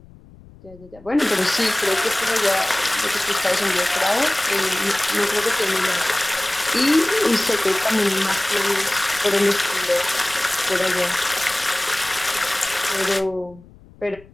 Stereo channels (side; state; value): left; noise; rumble, 23 dB below the sound